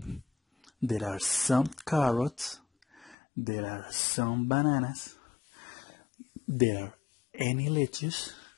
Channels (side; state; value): right; drops out; at 3.2 s